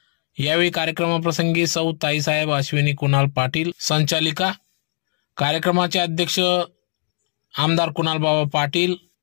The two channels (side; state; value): right; silent; 65 dB below the other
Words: यावेळी कार्यक्रमाप्रसंगी सौ ताईसाहेब अश्विनी कुणाल पाटील संचालिका, कार्यक्रमाचे अध्यक्ष आमदार कुणाल बाबा पाटील,